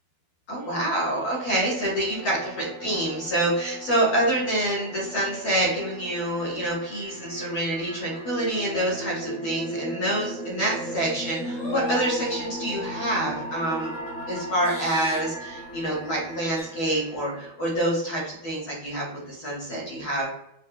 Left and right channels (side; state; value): right; late; 12 ms